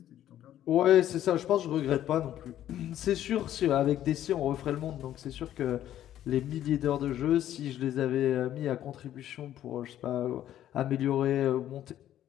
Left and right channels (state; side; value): quieter; right; 11.9 dB